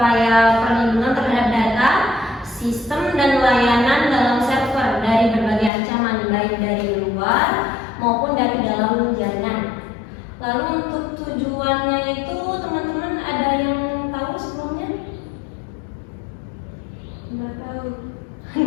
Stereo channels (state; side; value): drops out; right; at 5.7 s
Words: perlindungan terhadap data, sistem dan layanan dalam server dari berbagai ancaman, baik dari luar maupun dari dalam jaringan. Lalu untuk tujuannya itu teman-teman ada yang tahu sebelumnya? Nggak tahu.